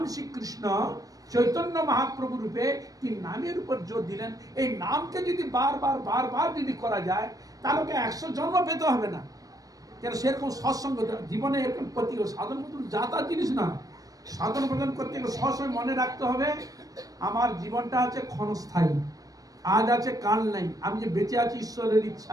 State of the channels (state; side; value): late; left; 0.18 ms